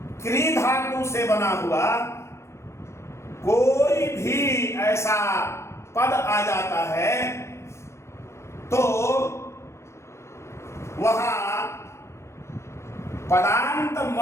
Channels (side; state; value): right; late; 0.13 ms